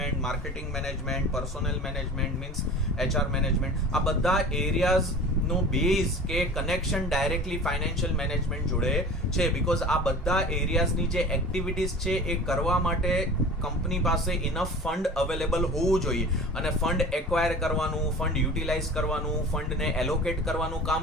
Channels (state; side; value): normal; both; correlation 0.39